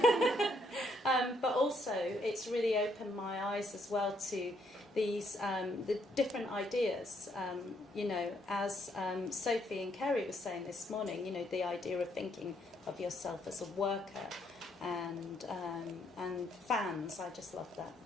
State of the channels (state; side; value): normal; both; correlation 0.72